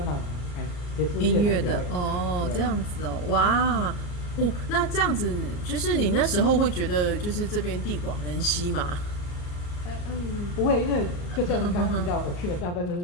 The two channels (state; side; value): late; right; 34 ms